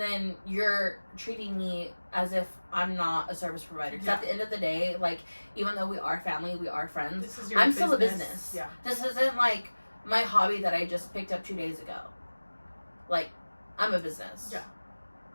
you're treating me as if I'm not a service provider. Because at the end of the day, like, even though we are family, we are friends, I'm still a business. Yeah. This isn't, like, my hobby that I just picked up 2 days ago. Like, I'm a business. Yeah.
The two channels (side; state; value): both; inverted; correlation -1.00